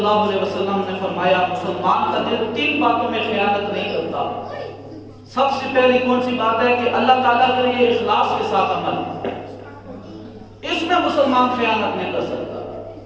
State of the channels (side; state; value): both; identical; correlation 1.00